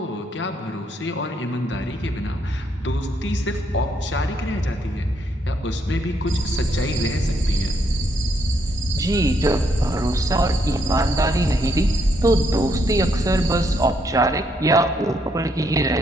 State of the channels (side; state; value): both; normal; correlation 0.74